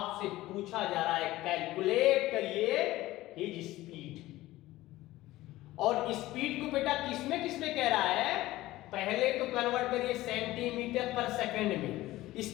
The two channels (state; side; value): quieter; right; 17.0 dB